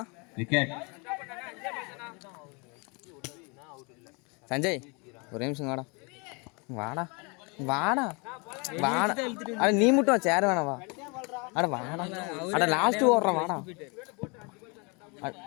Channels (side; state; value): right; quieter; 31.4 dB